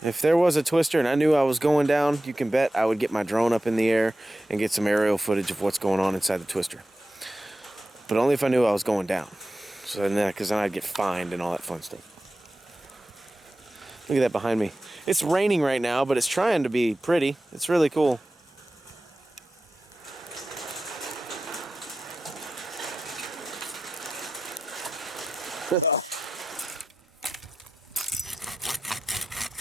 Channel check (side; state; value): both; normal; correlation 0.92